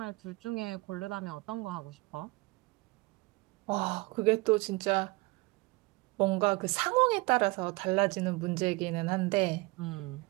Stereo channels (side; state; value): left; quieter; 24.4 dB